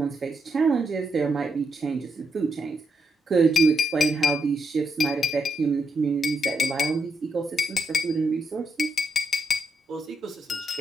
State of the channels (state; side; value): normal; both; correlation 0.81